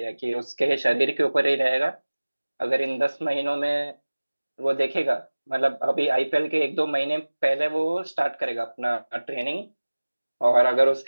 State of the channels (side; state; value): both; inverted; correlation -1.00